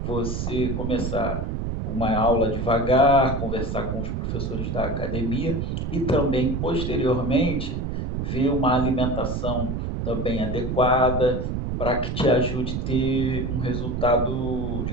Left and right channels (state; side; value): noise; right; rumble, 2 dB below the sound